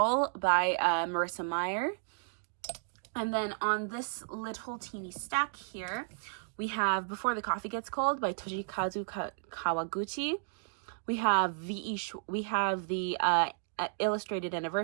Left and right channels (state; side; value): silent; left; digital silence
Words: by Marissa Meyer. And then on this little teeny stack here, we have Before the Coffee Gets Cold by Toshikazu Kawaguchi. We have the illustrated